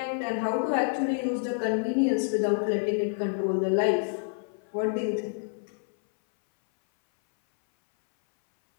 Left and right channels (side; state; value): right; silent; 59 dB below the other